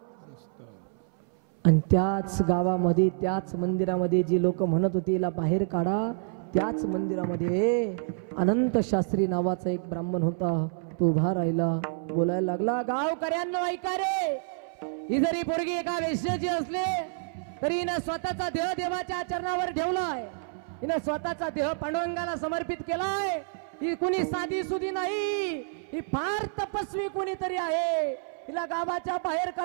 आणि त्याच गावामध्ये, त्याच मंदिरामध्ये जे लोक म्हणत होते याला बाहेर काढा, त्याच मंदिरामध्ये अनंत शास्त्री नावाचा एक ब्राह्मण होता. तो उभा राहिला, बोलायला लागला, गावकऱ्यांनो ऐका रे, ही जरी पोरगी एका वेश्याची असले तरी हिनं स्वतःचा देह देवाच्या चरणावर ठेवलाय. हिनं स्वतःचा देह पांडुरंगाला समर्पित केलाय. ही कुणी साधी सुधी नाही, ही फार तपस्वी कोणीतरी आहे. हिला गावाच्या बाहेर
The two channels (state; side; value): silent; left; 59 dB below the other